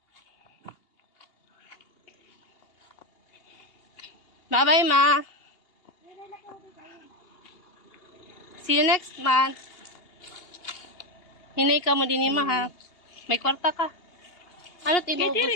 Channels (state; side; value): late; right; 2.8 ms